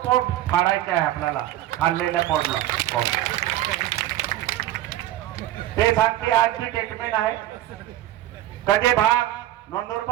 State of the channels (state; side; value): quieter; left; 13.9 dB